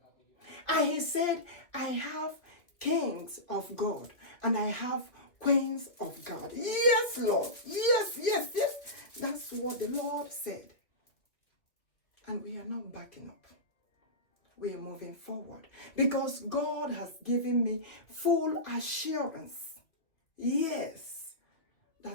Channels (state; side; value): late; right; 2.3 ms